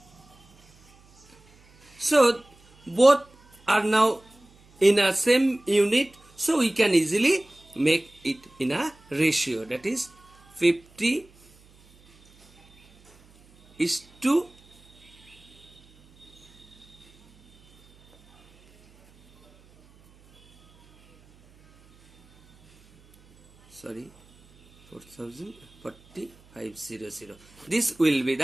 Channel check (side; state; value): right; noise; hum, 29 dB below the sound